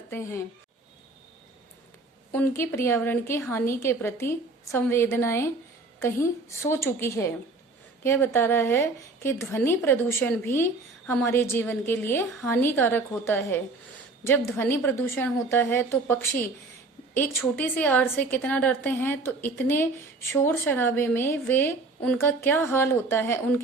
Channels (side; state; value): left; quieter; 3.4 dB